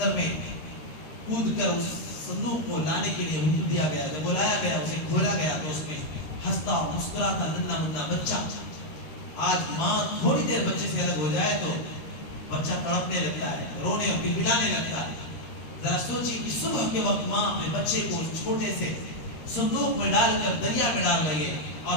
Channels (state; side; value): late; right; 13 ms